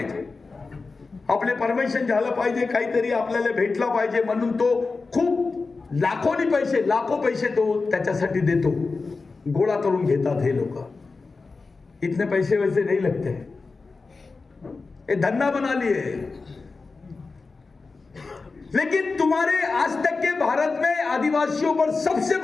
आपले परमिशन झालं पाहिजे, काहीतरी आपल्याला भेटला पाहिजे म्हणून तो खूप लाखो पैसे तो त्याच्यासाठी देतो. गोळा करून घेतात हे लोक. इतने पैसे वैसे नहीं लगते, ये धंधा बना लिए. लेकिन तुम्हारे आज तक के भारत में आदिवासियों पर सबसे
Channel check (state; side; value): quieter; right; 4.1 dB